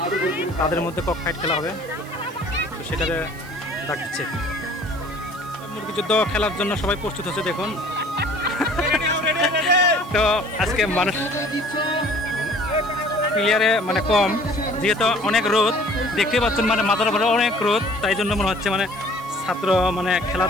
তাদের মধ্যে কক ফাইট খেলা হবে। তো সেটারে ডাক দিচ্ছে। মুরগি যুদ্ধ খেলার জন্য সবাই প্রস্তুত হচ্ছে দেখুন। তো আজকে মানুষ প্লেয়ারে মানে কম, যেহেতু অনেক রোদ দেখতে পাচ্ছেন, মানে মাথার উপরে অনেক রোদ, তাই জন্য মনে হচ্ছে মানে ছাত্র মানে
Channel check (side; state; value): right; noise; hiss, 22 dB below the sound